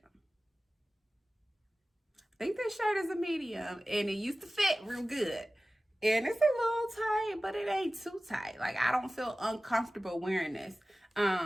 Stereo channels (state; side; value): normal; both; correlation 0.96